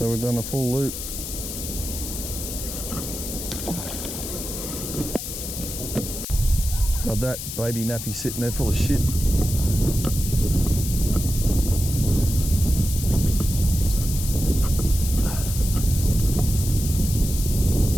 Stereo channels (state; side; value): noise; left; hiss, 7 dB below the sound